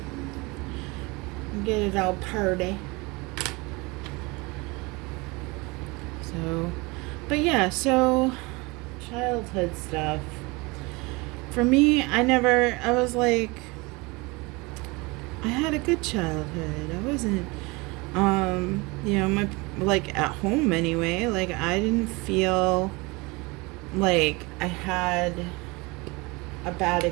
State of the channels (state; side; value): quieter; left; 25.6 dB